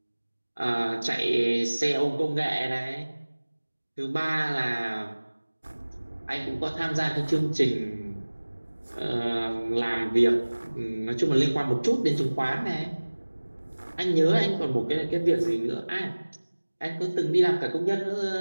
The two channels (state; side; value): inverted; both; correlation -1.00